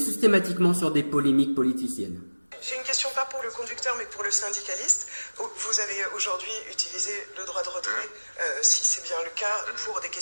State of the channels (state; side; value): inverted; both; correlation -1.00